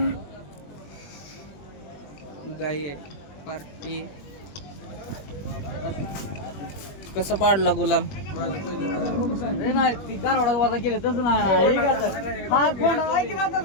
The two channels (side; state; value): right; late; 21 ms